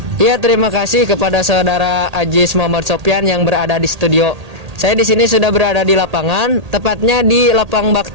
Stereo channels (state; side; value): late; left; 1.8 ms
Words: Iya, terima kasih kepada saudara Ajis Muhammad Sofyan yang berada di studio. Saya di sini sudah berada di lapangan, tepatnya di Lapang